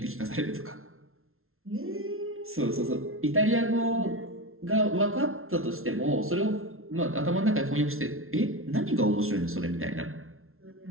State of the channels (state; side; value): late; left; 0.62 ms